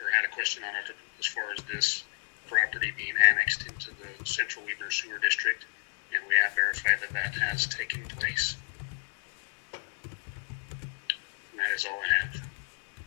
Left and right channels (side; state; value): right; silent; 57 dB below the other